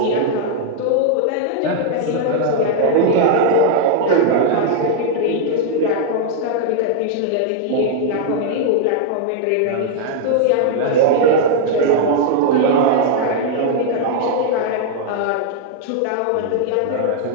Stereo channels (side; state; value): both; different; correlation -0.01